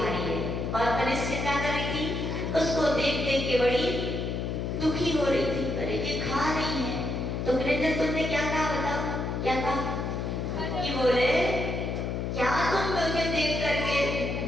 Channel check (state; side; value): noise; left; hum, 2 dB below the sound